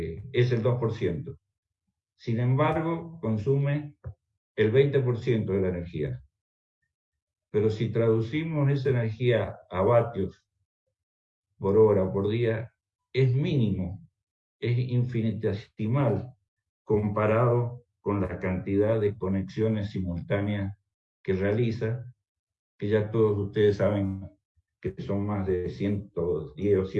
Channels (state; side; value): identical; both; correlation 1.00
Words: el 2%. Sin embargo, consume el 20% de la energía. Pero si traducimos esa energía a vatios por hora o por día, es mínimo, es infinitesimal comparado con la cantidad de conexiones simultáneas que realiza, que ya todos ustedes saben que son más de 110 o